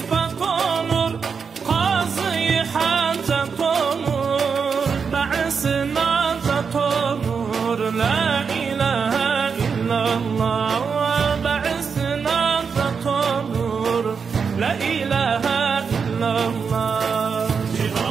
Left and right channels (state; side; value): quieter; left; 5.9 dB